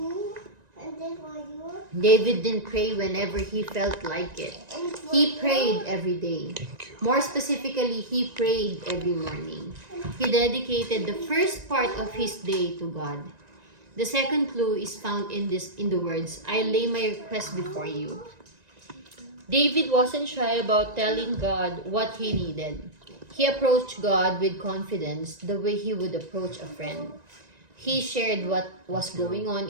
David didn't pray whenever he felt like it. He prayed every day. More specifically, he prayed every morning. He dedicated the first part of his day to God. The second clue is found in the words, "I lay my request before you." David wasn't shy about telling God what he needed. He approached God with confidence the way he would approach a friend. He shared what was going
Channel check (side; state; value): left; late; 1.9 ms